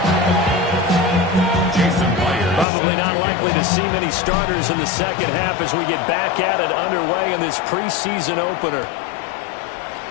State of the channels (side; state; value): right; drops out; at 2.7 s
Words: Probably not likely to see many starters in the second half as we get back at it underway in this preseason opener.